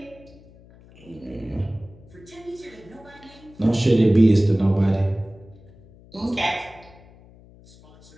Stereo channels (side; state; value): left; noise; hum, 24 dB below the sound